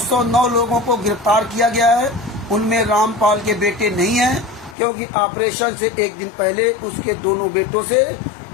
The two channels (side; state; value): right; drops out; at 4.8 s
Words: लोगों को गिरफ्तार किया गया है उनमें रामपाल के बेटे नहीं हैं, क्योंकि ऑपरेशन से एक दिन पहले उसके दोनों बेटों से